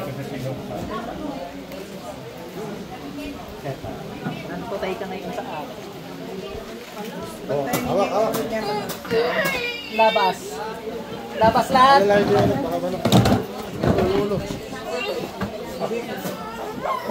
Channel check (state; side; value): identical; both; correlation 1.00